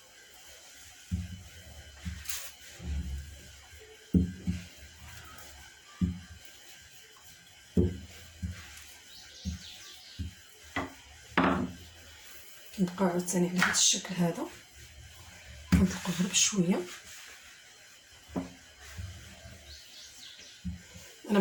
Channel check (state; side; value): identical; both; correlation 1.00